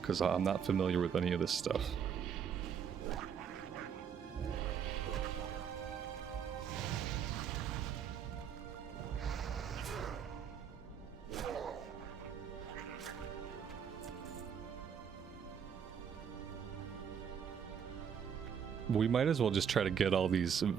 because I'm not familiar with any of this stuff. We might as well just try to get all these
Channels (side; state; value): left; quieter; 7.7 dB